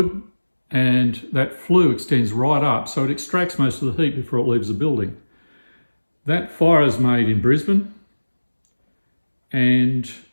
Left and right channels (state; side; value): inverted; both; correlation -1.00